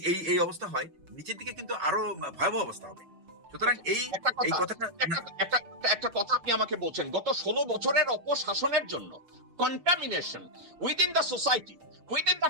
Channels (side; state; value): left; late; 6.6 ms